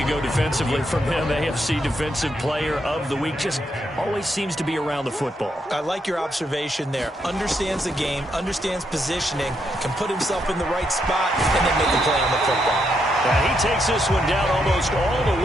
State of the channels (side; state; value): both; normal; correlation 0.79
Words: defensively from him. AFC Defensive Player of the Week. Just always seems to be around the football. I like your observation there. Understands the game, understands positioning, can put himself in the right spot, and then make a play on the football. And he takes this one down almost all the